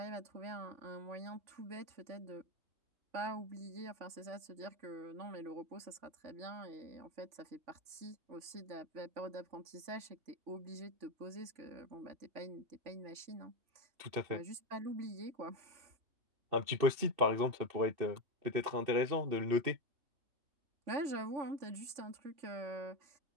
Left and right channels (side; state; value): left; late; 3.5 ms